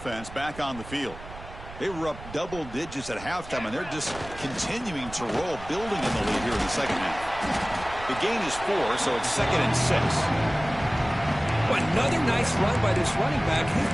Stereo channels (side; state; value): right; noise; rumble, 15 dB below the sound